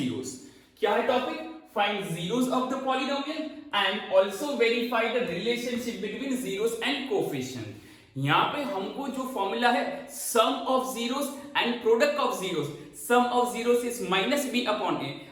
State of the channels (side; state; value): both; identical; correlation 1.00